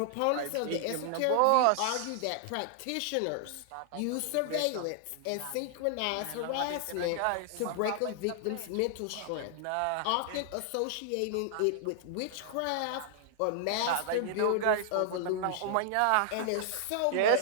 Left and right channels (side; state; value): both; different; correlation -0.01